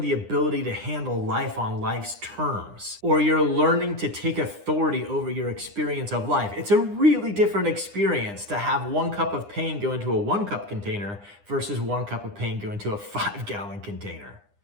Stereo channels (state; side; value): late; left; 9.9 ms